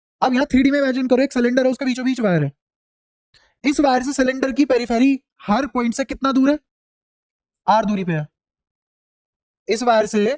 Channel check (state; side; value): identical; both; correlation 1.00